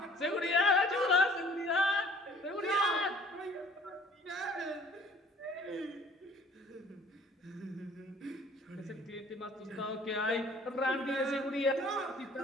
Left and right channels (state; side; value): normal; both; correlation 0.55